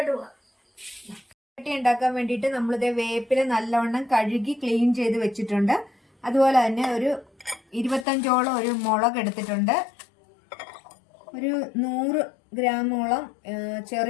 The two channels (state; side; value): drops out; right; at 8.1 s